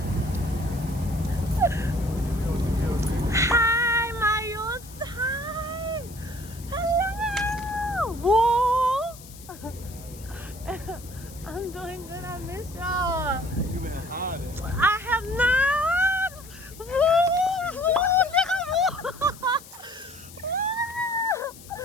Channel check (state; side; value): noise; left; hiss, 19 dB below the sound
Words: Hi, Mayos. Hi. Hello. Whoa. I'm doing good. I miss y'all. You been hiding. I have not. Woo.